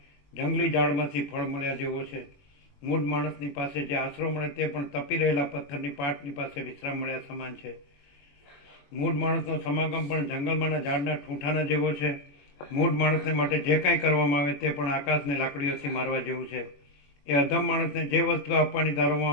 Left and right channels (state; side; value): late; right; 21 ms